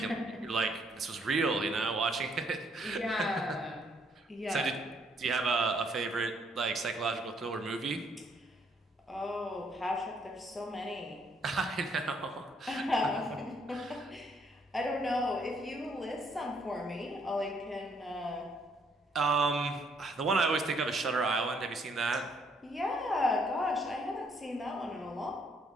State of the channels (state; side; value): normal; both; correlation 0.69